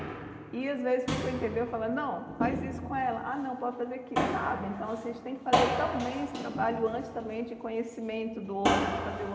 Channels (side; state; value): both; identical; correlation 1.00